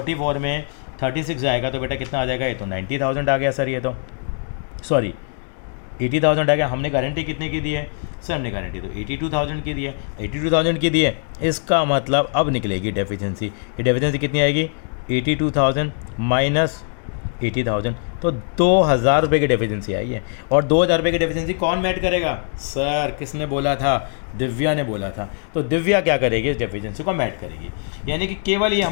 में 36 जाएगा तो बेटा कितना आ जाएगा, ये तो 90,000 आ गया सर, ये तो सॉरी 80,000 आ गया। हमने गारंटी कितने की दी है सर, हमने गारंटी तो 82,000 की दी है, 82,000 की दी है। इसका मतलब अब निकलेगी डेफिशिएंसी, ये डेफिशिएंसी कितनी आएगी 82,000 माइनस 80,000, तो 2,000 रुपये की डेफिशिएंसी आई है। और 2,000 रुपये की डेफिशिएंसी कौन मैट करेगा सर, किसने बोला था, दिव्या ने बोला था। तो दिव्या क्या करेगी, इस डेफिशिएंसी को मैट करेगी। यानी कि केवल ये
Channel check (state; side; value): silent; right; 56 dB below the other